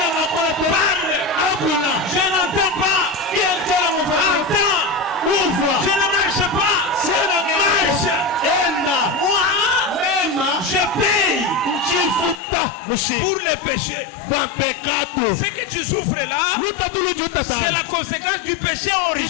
Parle. Je n'entends pas. Entends. Ouvre. Je ne marche pas. Marche. Moi, je paye pour le péché. Ce que tu souffres là, c'est la conséquence du péché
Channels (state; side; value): drops out; right; at 12.4 s